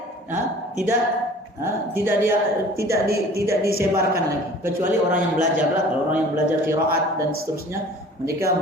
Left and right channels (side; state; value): both; normal; correlation 0.47